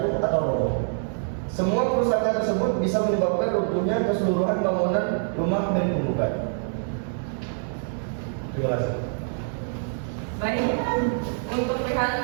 atau roboh. Semua kerusakan tersebut bisa menyebabkan runtuhnya keseluruhan bangunan rumah milik penggugat. Terima kasih. Baik, untuk pihak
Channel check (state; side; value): silent; left; 60 dB below the other